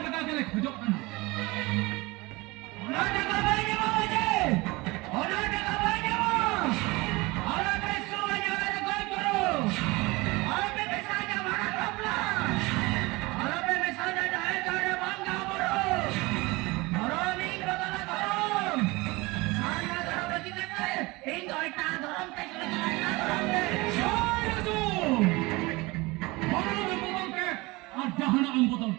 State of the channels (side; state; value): left; quieter; 23.2 dB